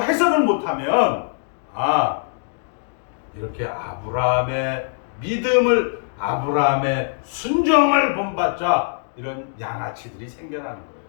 해석을 못하면 이렇게 아브라함의 믿음을, 아브라함의 순종을 본받자 이런 양아치들이 생겨나는 거예요.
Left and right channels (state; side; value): silent; right; digital silence